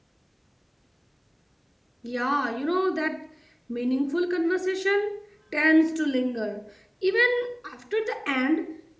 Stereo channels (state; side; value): identical; both; correlation 1.00